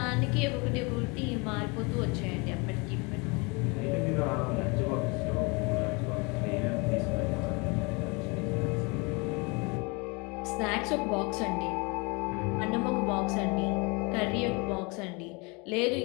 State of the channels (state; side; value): quieter; right; 29.2 dB